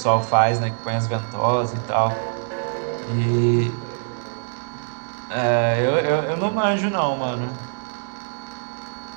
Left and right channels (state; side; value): silent; left; digital silence